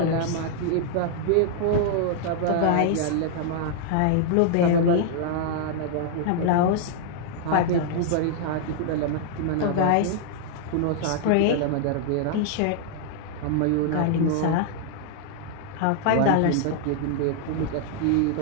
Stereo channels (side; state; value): both; different; correlation 0.00